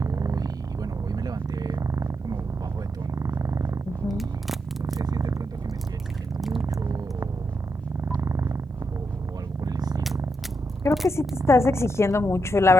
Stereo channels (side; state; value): both; normal; correlation 0.83